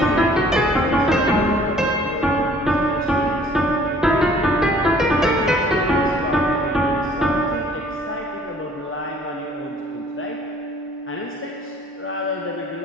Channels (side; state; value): both; normal; correlation 0.56